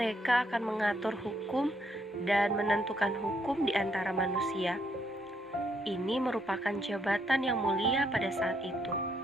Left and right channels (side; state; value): both; normal; correlation 0.74